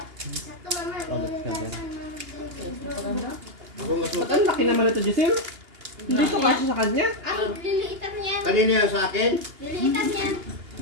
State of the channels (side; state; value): left; late; 2.8 ms